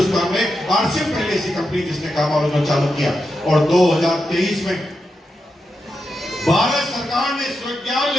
में आरसीएम पहली ऐसी कंपनी जिसने गामा ओरिजिनल चालू किया। और 2023 में भारत सरकार ने स्वीकृति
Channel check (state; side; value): normal; both; correlation 0.87